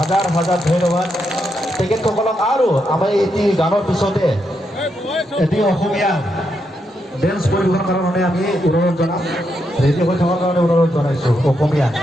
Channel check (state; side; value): normal; both; correlation 0.81